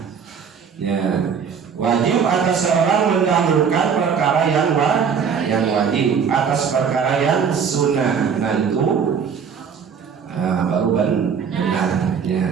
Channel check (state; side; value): quieter; left; 6.7 dB